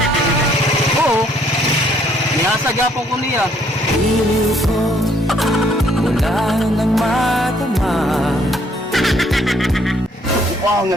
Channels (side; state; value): both; normal; correlation 0.66